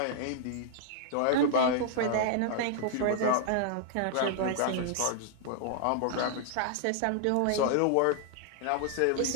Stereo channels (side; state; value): both; different; correlation -0.01